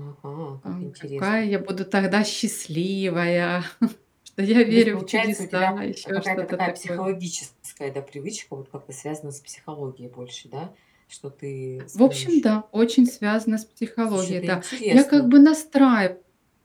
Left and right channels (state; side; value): identical; both; correlation 1.00